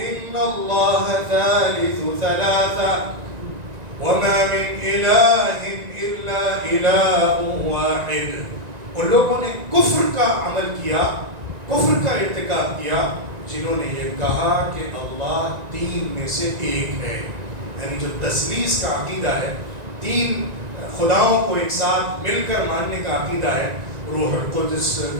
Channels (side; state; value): left; late; 1.9 ms